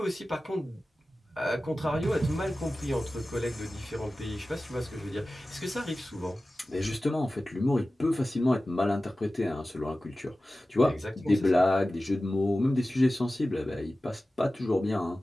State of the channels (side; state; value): both; normal; correlation 0.96